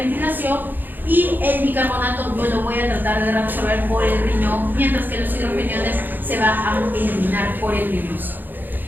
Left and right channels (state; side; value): late; left; 0.089 ms